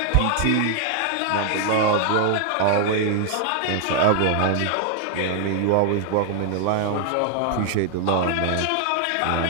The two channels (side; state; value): both; different; correlation 0.00